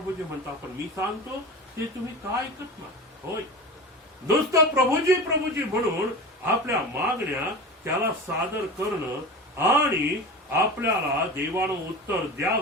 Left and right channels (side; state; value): both; normal; correlation 0.31